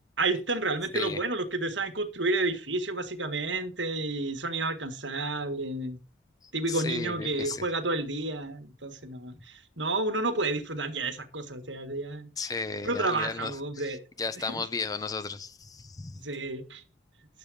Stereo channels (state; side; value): normal; both; correlation 0.11